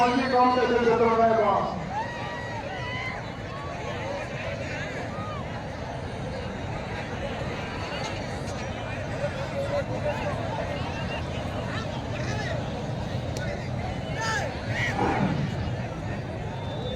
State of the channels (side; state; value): both; identical; correlation 1.00